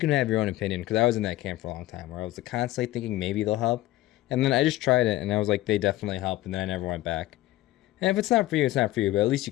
have your own opinion, because I was in that camp for a long time where I was constantly thinking maybe they'll help. And then I just tried it, and I was like, they definitely help, and then I never went back. And if it's not for you, it's not for you, but at least you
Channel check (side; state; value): right; quieter; 16.4 dB